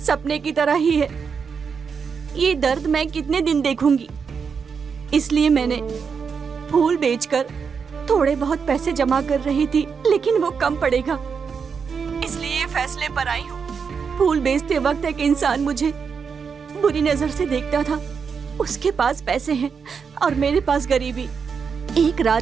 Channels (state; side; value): quieter; left; 6.0 dB